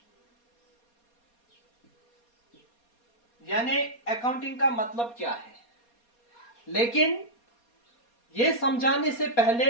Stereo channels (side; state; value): right; late; 4.2 ms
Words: यानी अकाउंटिंग का मतलब क्या है। लेकिन ये समझाने से पहले